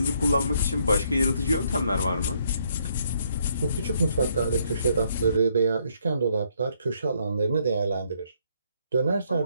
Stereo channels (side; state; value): both; inverted; correlation -0.70